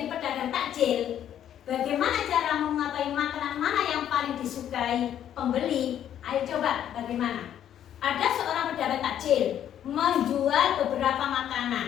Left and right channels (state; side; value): quieter; right; 10.4 dB